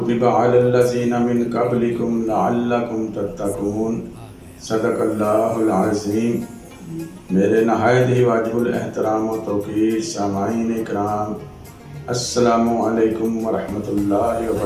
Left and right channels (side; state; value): both; identical; correlation 1.00